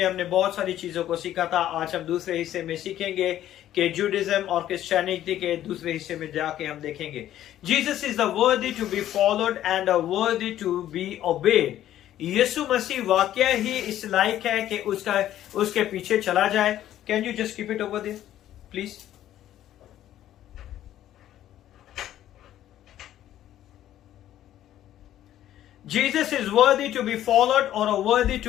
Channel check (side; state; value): right; quieter; 12.3 dB